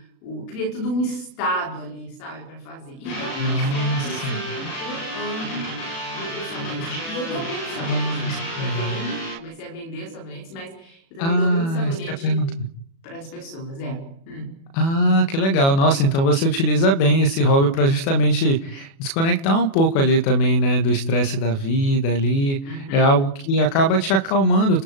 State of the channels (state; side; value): late; right; 36 ms